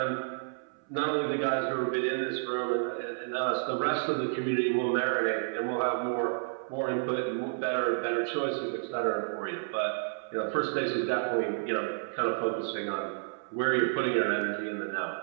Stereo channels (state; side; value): silent; left; 57 dB below the other